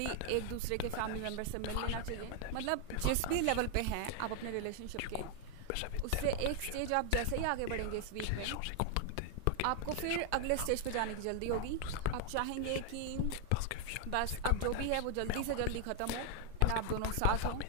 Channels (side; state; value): both; different; correlation 0.00